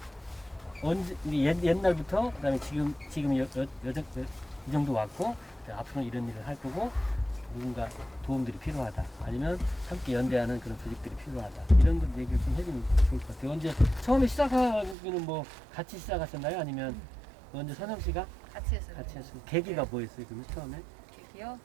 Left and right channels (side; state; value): left; drops out; at 15.0 s